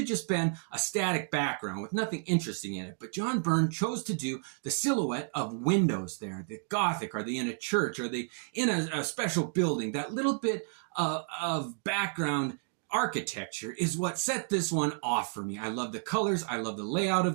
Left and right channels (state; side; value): silent; left; 56 dB below the other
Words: just been a static background with nothing interesting in it. But John Byrne chose to do the silhouette of windows there. The Gothic, are they in a church? Are they in a special building? That little bit of background architecture is what set this one off for me. I love the colors. I love the layout